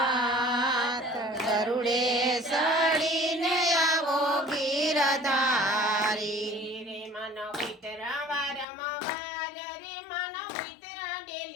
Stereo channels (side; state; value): right; drops out; at 8.7 s